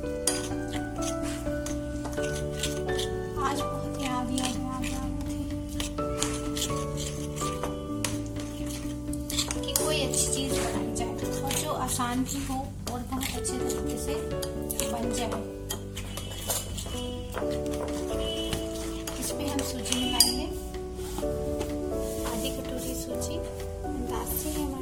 आज बहुत याद कि कोई अच्छी चीज बनाई जाए और जो आसान भी हो और बहुत अच्छे तरीके से बन जाए। इसमें हम सूजी मिलाएंगे, आधी कटोरी सूजी, अंदाज से है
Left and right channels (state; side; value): identical; both; correlation 1.00